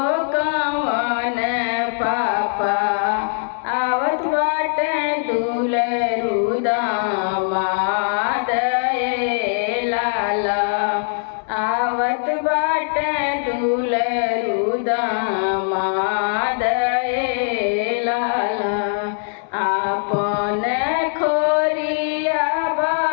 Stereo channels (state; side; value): silent; right; digital silence